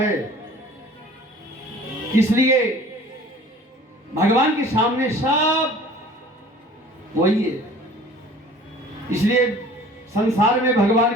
इसलिए भगवान के सामने सब वही है। इसलिए संसार में भगवान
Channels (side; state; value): both; normal; correlation 0.48